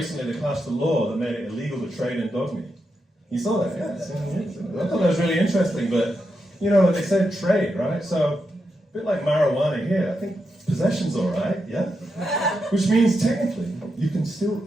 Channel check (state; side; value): normal; both; correlation 0.85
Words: they passed a law that made it illegal to trade in dog meat. You saw that, yeah? It's in the news. I thought that was really interesting, but they said trade, right? So, a bit like marijuana here, I think possession's all right, yeah? Which means technically you can still